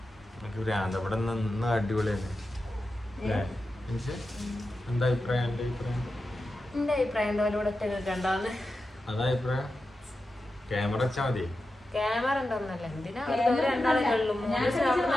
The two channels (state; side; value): normal; both; correlation 0.91